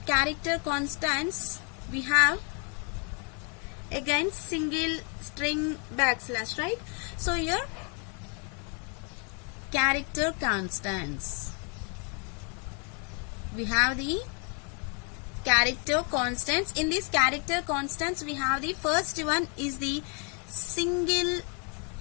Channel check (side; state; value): right; quieter; 37.6 dB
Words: character constants we have again single string backslash, right? So here character constants. We have the character constants. In these character constants we have the first one is the single.